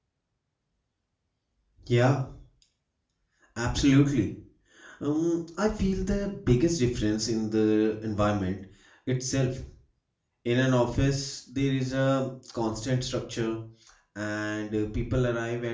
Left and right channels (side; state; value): both; identical; correlation 1.00